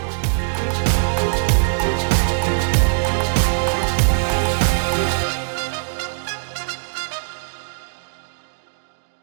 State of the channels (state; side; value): silent; left; digital silence